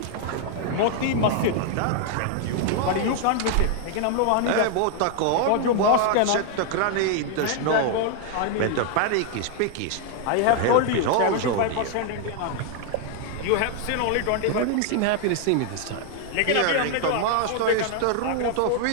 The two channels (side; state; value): both; different; correlation 0.00